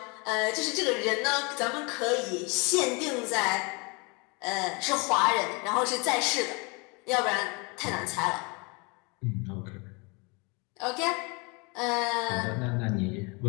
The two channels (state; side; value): quieter; right; 29.8 dB